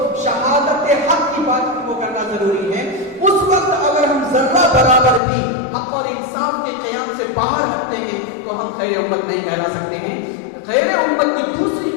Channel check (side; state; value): right; drops out; at 5.2 s